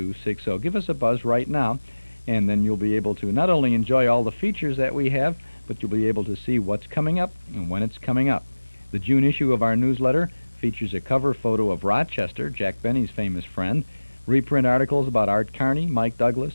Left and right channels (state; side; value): inverted; both; correlation -1.00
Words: Give us a buzz right now, and then you'll be able to not only enjoy all the features that we have, but you'll be able to see what's coming up and when it's coming up. The June issue of our newsletter features a cover photo of Rochester, Jack Benny's famous friend, reprint articles about Art Carney, Mike